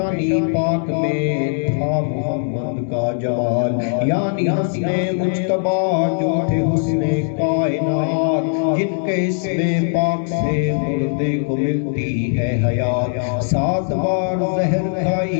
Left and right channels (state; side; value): silent; right; 66 dB below the other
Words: پاک میں تھا محمد کا جمال، یعنی حسن مجتبی جو تھے حسن کائنات، جن کے اسم پاک سے مردے کو ملتی ہے حیات، 7 بار زہر